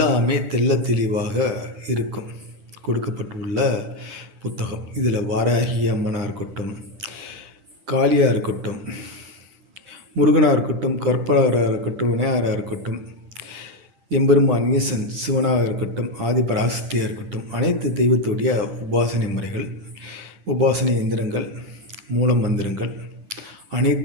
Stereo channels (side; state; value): left; late; 9.0 ms